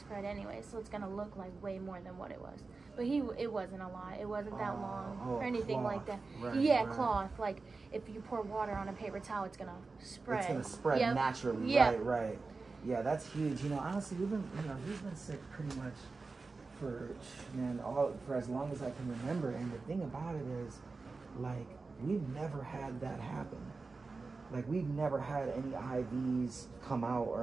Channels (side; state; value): left; quieter; 4.0 dB